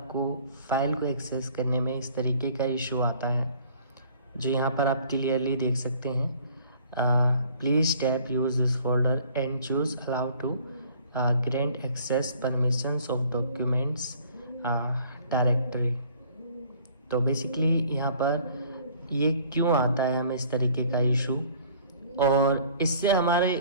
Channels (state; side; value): inverted; both; correlation -0.55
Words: फाइल को एक्सेस करने में इस तरीके का इशू आता है, जो यहाँ पर आप क्लियरली देख सकते हैं, please tap use this folder and choose allow to grant access permissions of documents directory. तो बेसिकली यहाँ पर ये क्यों आता है हमें इस तरीके का इशू और इससे हमारे